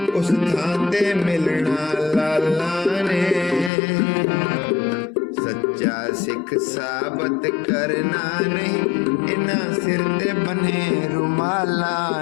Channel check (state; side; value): drops out; right; at 3.7 s